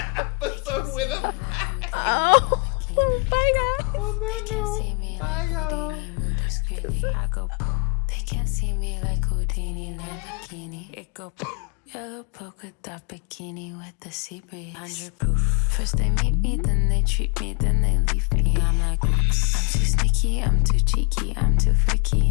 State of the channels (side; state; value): right; quieter; 32.0 dB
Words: episode with a bang. Oh, bye, guys. On that note, bye y'all. I go, they can't see me like Houdini in a bikini. It go, yellow polka dot bikini with the sea breeze. 100 proof. First they meet me, then they treat me, then they leave me. I'm like, oops. I'm too sneaky, I'm too cheeky, I'm too